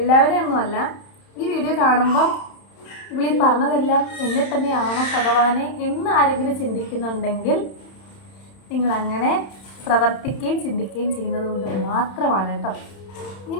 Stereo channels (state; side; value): late; right; 31 ms